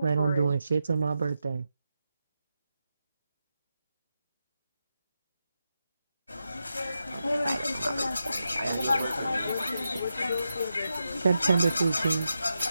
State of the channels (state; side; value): inverted; both; correlation -0.88